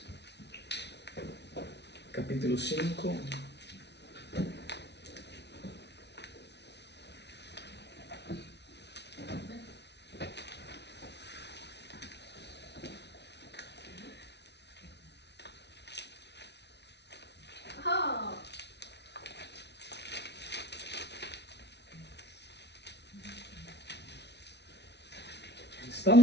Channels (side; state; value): right; late; 0.50 ms